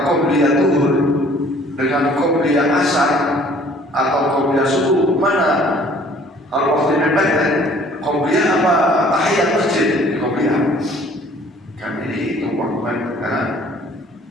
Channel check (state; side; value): normal; both; correlation 0.55